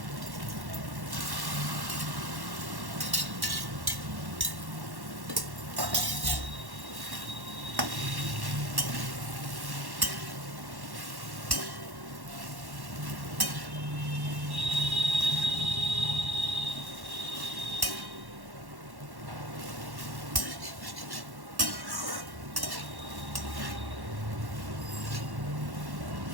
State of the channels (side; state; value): left; late; 1.1 ms